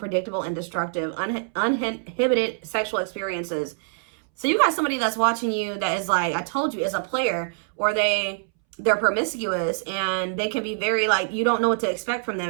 and destructive. Uninhibited sexual experiences. So you got somebody that's watching you that is like, I told you, is a player, or they're promiscuous, and they can be very, like, you don't know what to expect from them,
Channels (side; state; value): left; silent; 62 dB below the other